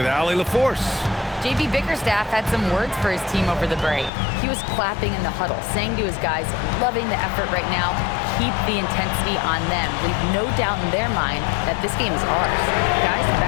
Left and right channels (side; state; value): right; drops out; at 4.1 s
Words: Allie LaForce. JB Bickerstaff had some words for his team over the break. He was clapping in the huddle, saying to his guys, loving the effort right now, keep the intensity on them. Leave no doubt in their mind that this game is ours. Guys,